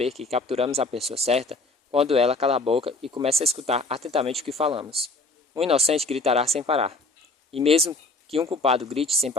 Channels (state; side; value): quieter; right; 3.2 dB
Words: que capturamos a pessoa certa quando ela cala a boca e começa a escutar atentamente o que falamos. Um inocente gritará sem parar. E mesmo que um culpado grite sem